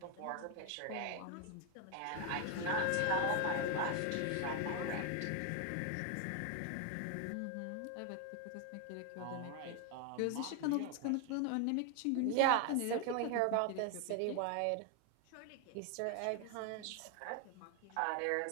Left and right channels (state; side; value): different; both; correlation 0.01